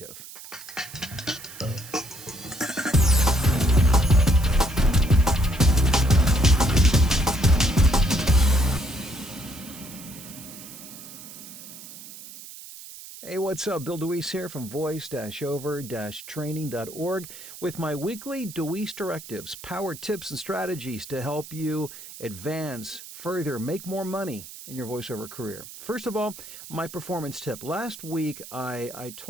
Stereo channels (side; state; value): right; noise; hiss, 15 dB below the sound